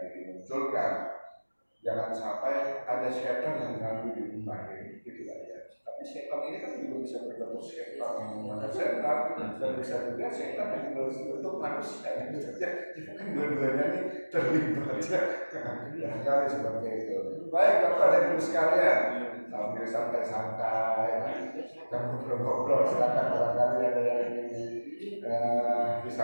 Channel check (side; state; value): both; inverted; correlation -1.00